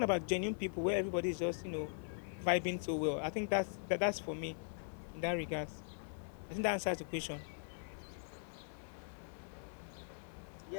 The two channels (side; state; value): right; silent; 51 dB below the other